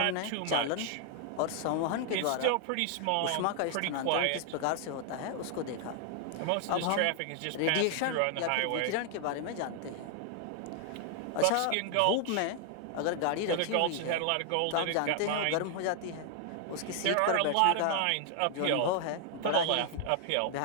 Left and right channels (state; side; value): different; both; correlation 0.00